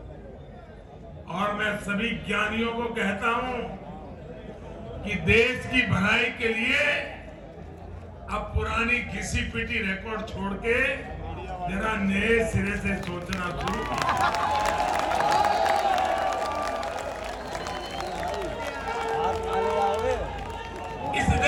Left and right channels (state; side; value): identical; both; correlation 1.00